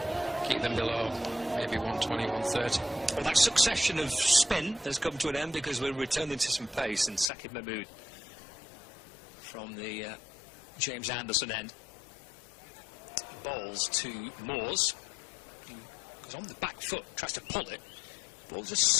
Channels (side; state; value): right; drops out; at 7.3 s